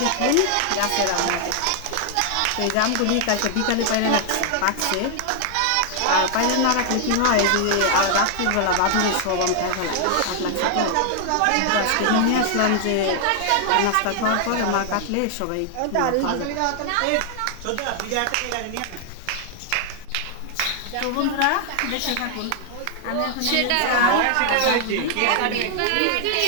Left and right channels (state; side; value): different; both; correlation 0.00